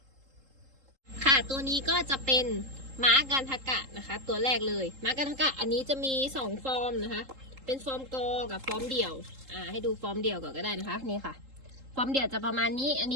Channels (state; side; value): late; left; 3.8 ms